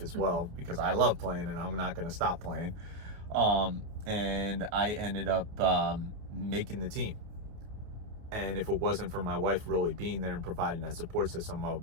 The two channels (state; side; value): late; left; 28 ms